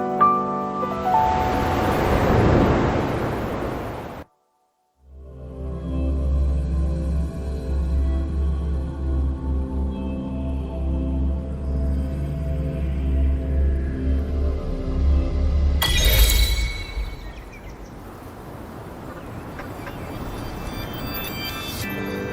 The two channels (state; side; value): identical; both; correlation 1.00